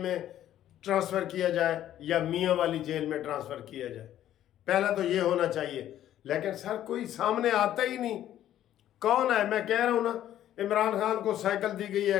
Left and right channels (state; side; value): quieter; right; 12.0 dB